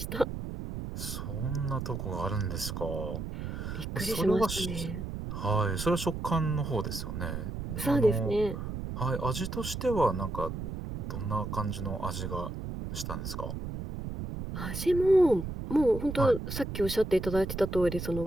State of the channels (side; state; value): right; noise; rumble, 6 dB below the sound